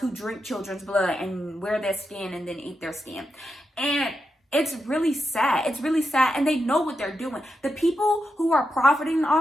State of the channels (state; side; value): normal; both; correlation 0.86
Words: drink children's blood and wear their skin and then eat their skin. And it's really sad. It's really sad. And they know what they're doing. The people who are profiting